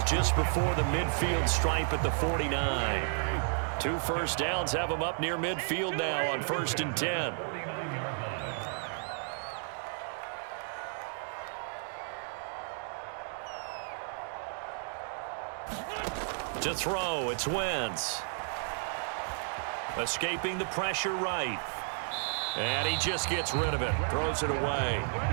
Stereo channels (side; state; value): left; silent; 56 dB below the other